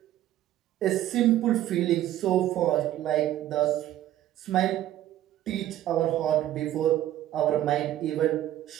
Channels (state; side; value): quieter; left; 13.1 dB